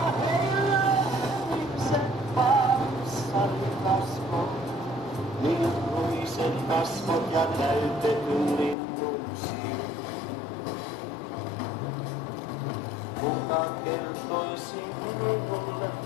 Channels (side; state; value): right; drops out; at 8.8 s